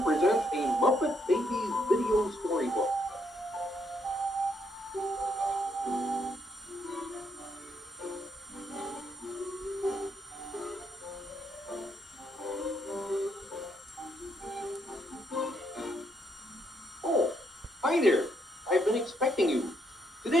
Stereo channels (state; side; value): normal; both; correlation 0.75